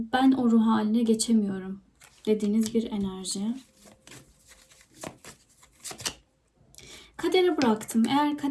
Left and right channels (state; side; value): identical; both; correlation 1.00